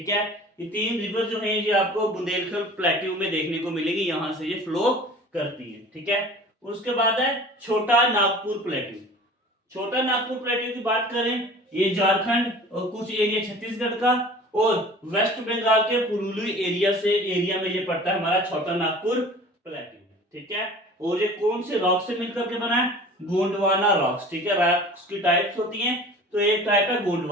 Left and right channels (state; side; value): normal; both; correlation 0.43